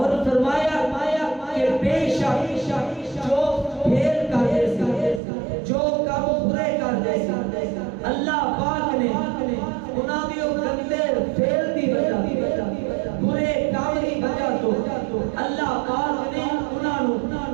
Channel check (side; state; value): left; drops out; at 5.2 s